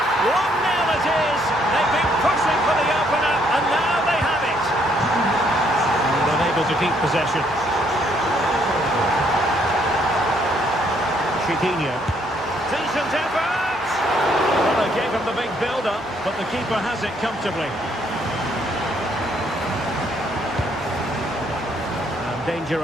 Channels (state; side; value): normal; both; correlation 0.69